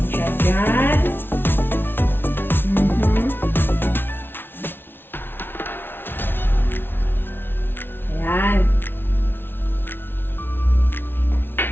Siya dyan. Ayan.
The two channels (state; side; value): late; right; 0.10 ms